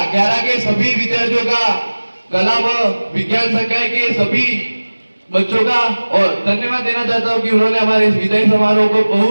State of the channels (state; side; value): inverted; both; correlation -1.00